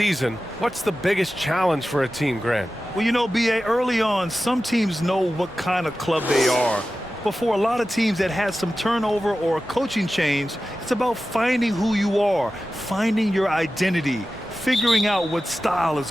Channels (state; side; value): normal; both; correlation 0.94